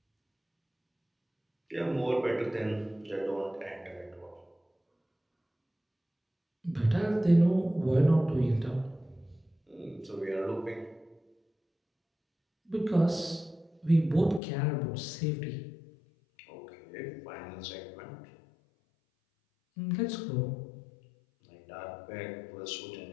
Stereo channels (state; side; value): drops out; right; at 14.4 s